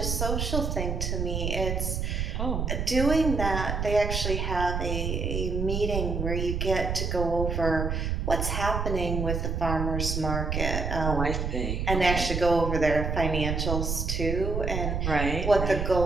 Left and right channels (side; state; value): right; noise; rumble, 1 dB below the sound